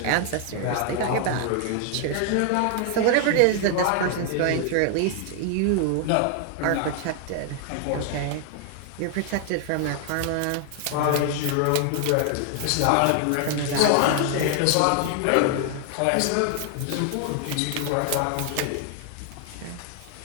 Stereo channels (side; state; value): both; different; correlation 0.00